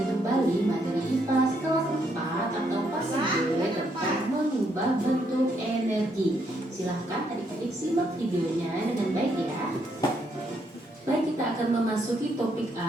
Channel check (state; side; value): normal; both; correlation 0.74